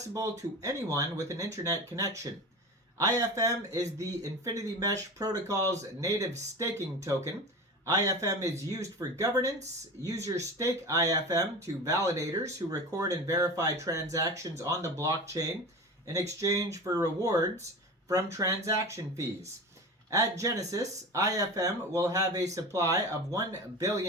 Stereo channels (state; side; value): normal; both; correlation 0.30